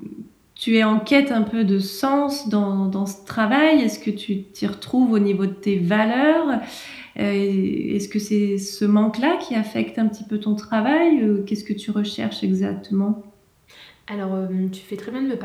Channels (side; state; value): both; identical; correlation 1.00